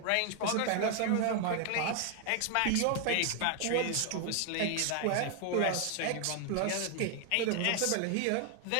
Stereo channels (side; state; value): both; different; correlation 0.00